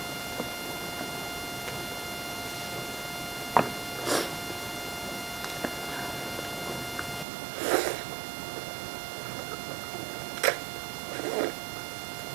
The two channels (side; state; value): left; drops out; at 7.2 s